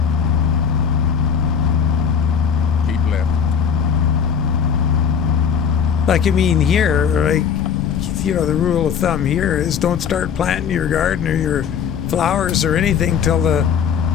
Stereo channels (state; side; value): quieter; right; 7.2 dB